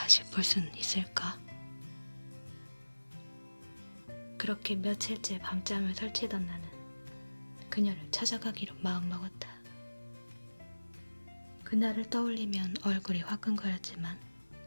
볼 수는 있을까? 그렇게 며칠째 밤잠을 설치던 나는 그녀를 찾아가기로 마음먹었다. 그날을 떠올리면 얼굴이 화끈거렸지만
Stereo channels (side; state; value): both; inverted; correlation -1.00